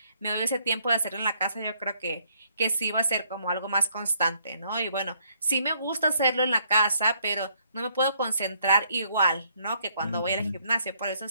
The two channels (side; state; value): both; inverted; correlation -0.70